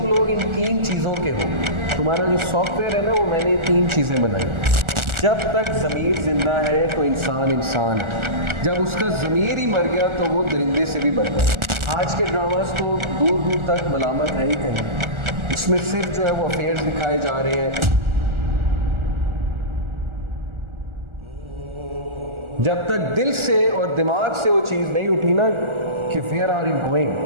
लोग इन 3 चीज़ों के हो। तुम्हारा जो सॉफ्टवेयर है ना, वो मैंने 3 चीज़ें बनाई। जब तक ज़मीर ज़िंदा है तो इंसान इंसान है, जब उसका ज़मीर ही मर गया तो वो दरिंदे से भी बढ़ गया। आज के ड्रामास तो दूर दूर तक मलामत है ही कहीं, इसमें सिर्फ जो है वो अफेयर्स दिखाए जा रहे हैं। जब तक दिल से और दिमाग से वो चीज़ नहीं उठी ना कि वेयर आर यू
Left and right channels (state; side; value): late; left; 1.4 ms